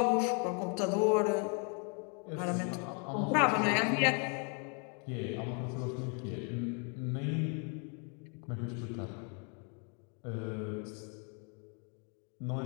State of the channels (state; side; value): quieter; right; 38.0 dB